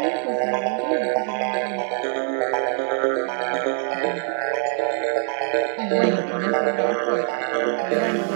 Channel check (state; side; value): silent; left; 63 dB below the other